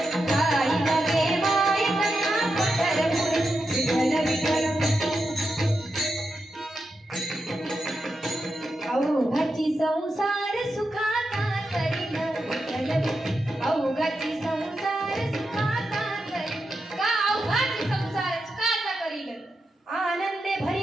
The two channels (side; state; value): both; normal; correlation 0.87